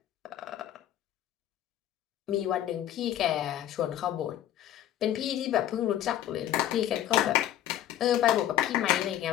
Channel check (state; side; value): quieter; right; 12.0 dB